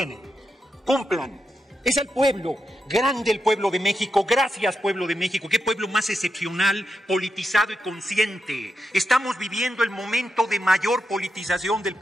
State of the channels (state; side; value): normal; both; correlation 0.86